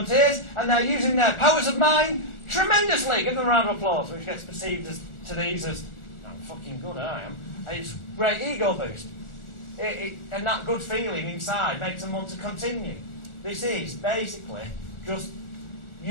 and they're using their powers of mind tremendously. Give them a round of applause, which gets perceived as, to these as, I'm fucking good, I am. It's great ego boost. And that good feeling inside makes them want to continue. This is basically just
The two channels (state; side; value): late; right; 1.4 ms